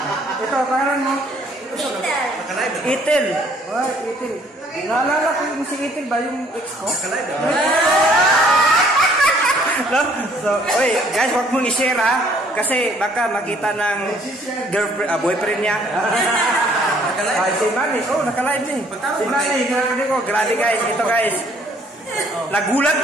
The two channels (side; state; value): both; normal; correlation 0.61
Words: Ito, pangalan mo? Itel. Itel. Oh, Itel. Naalala ko yung si Itel ba? Yung ex ko? No? So, oy, guys, wag mong i-share ha. Kasi baka makita ng girlfriend, boyfriend niya. Si Manny, naka-live niya. Si Manny, grabe guys, ito guys. Nagulat